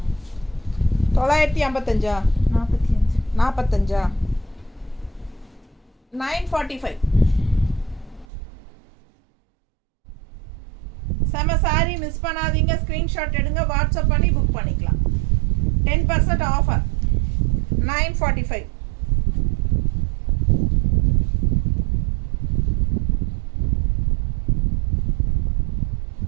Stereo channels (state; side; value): drops out; left; at 8.2 s